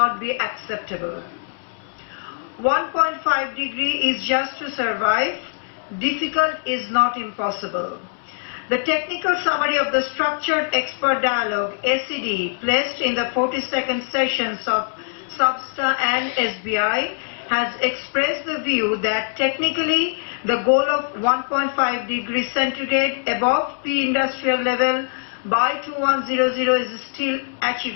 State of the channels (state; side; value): silent; right; 64 dB below the other